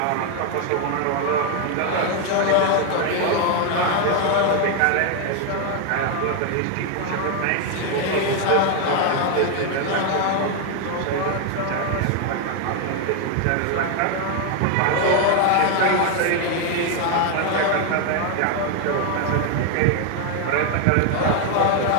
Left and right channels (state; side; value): different; both; correlation 0.01